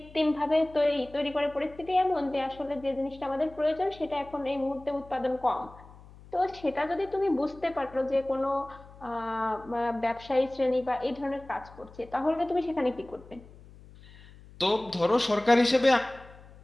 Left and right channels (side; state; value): left; noise; hum, 21 dB below the sound